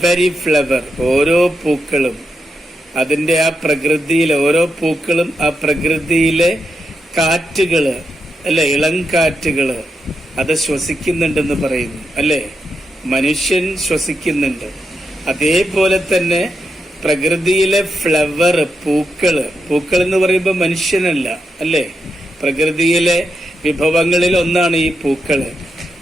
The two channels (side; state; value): both; normal; correlation 0.85